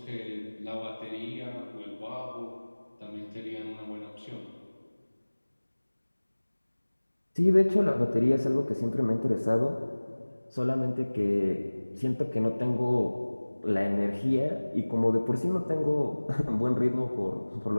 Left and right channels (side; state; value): both; inverted; correlation -1.00